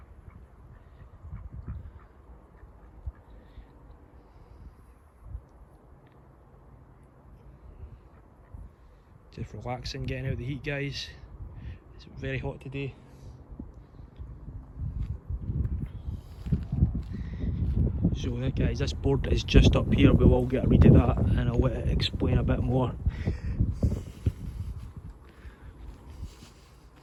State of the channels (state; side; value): identical; both; correlation 1.00